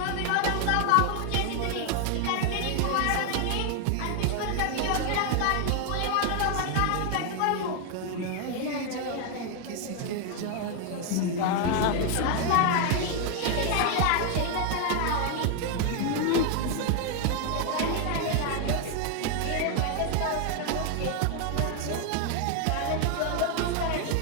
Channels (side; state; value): both; different; correlation 0.00